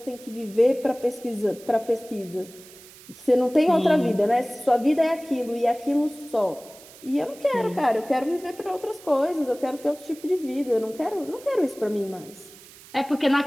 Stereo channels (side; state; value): right; noise; hiss, 21 dB below the sound